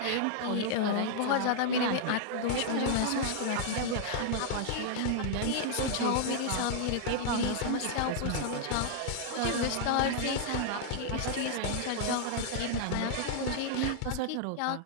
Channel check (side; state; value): both; different; correlation -0.01